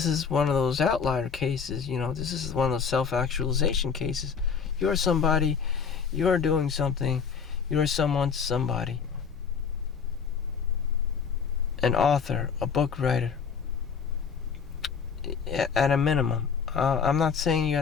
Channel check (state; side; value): quieter; right; 6.3 dB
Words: is one of those outlier cases, you know. This is one of those self-actualization cases. You're somebody, you're doing something, you're somebody. An author, a book writer, at a minimum. I'm not saying you